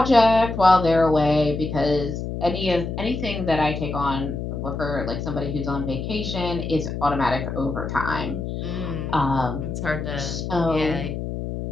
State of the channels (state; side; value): noise; left; hum, 5 dB below the sound